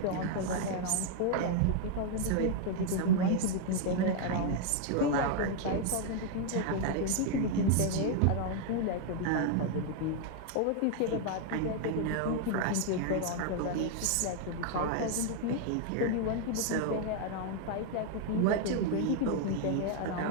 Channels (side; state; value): both; different; correlation 0.00